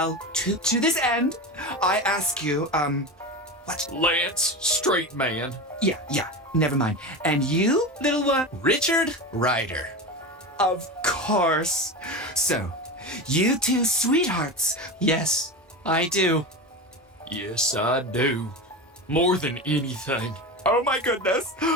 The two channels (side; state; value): both; normal; correlation 0.24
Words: to this end, I ask you, what? Lance, straight man. Yeah, never mind. And you, little one? Richard Ryder. Of course. So, you two sweethearts. Yes, I do. Yes, I do. More than anything. Oh my goodness.